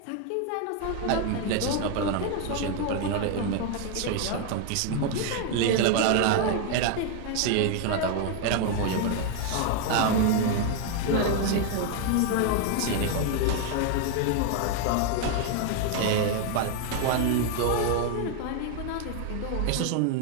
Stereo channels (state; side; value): different; both; correlation 0.01